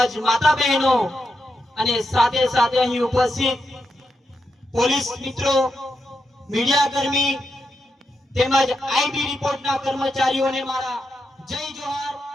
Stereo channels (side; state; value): both; normal; correlation 0.85